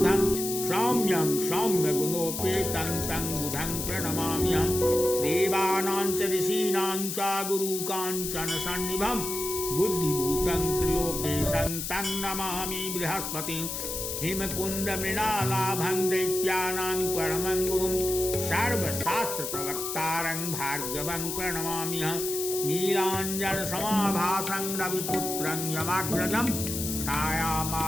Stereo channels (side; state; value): left; noise; hiss, 4 dB below the sound